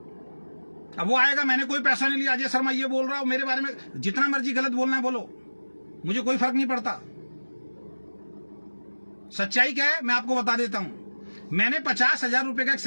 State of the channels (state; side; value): inverted; both; correlation -1.00